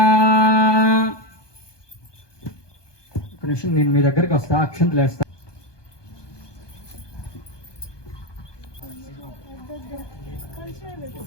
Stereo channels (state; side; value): late; right; 1.2 ms